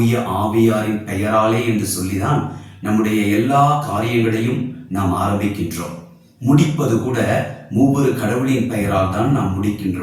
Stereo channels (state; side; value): identical; both; correlation 1.00